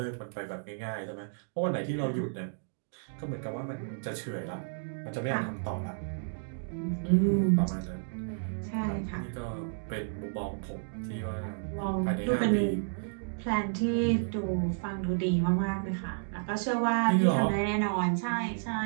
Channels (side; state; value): left; silent; digital silence